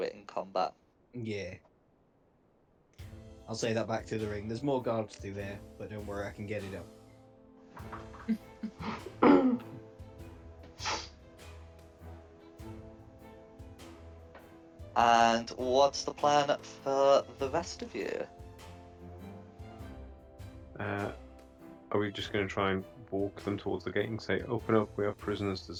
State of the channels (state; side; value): identical; both; correlation 1.00